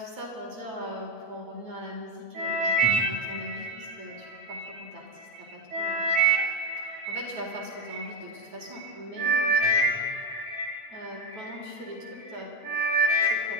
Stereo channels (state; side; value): late; left; 9.3 ms